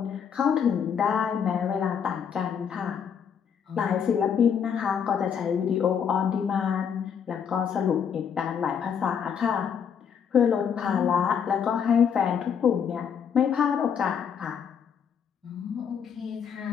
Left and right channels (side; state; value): right; quieter; 7.5 dB